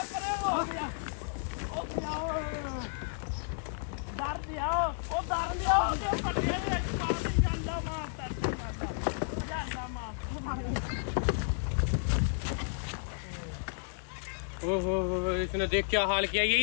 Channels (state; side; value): silent; right; digital silence